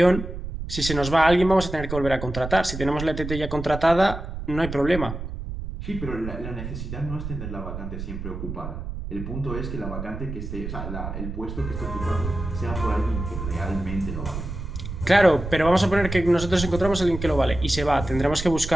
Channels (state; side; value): noise; right; rumble, 7 dB below the sound